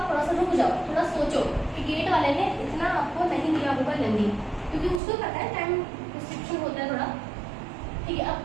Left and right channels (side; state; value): left; drops out; at 5.0 s